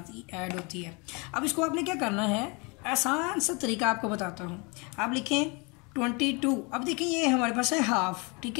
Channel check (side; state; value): right; quieter; 29.7 dB